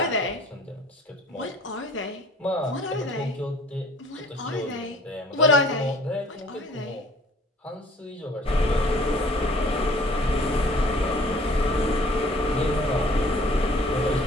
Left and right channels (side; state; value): both; normal; correlation 0.52